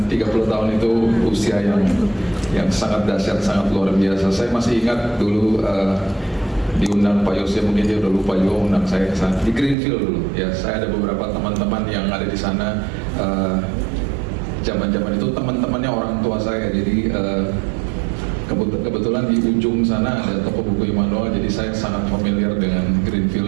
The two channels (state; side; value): drops out; left; at 9.8 s